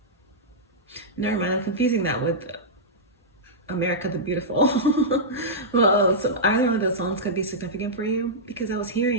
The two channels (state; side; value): normal; both; correlation -0.11